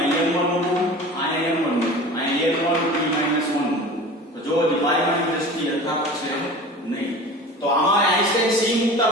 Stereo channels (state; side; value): normal; both; correlation 0.37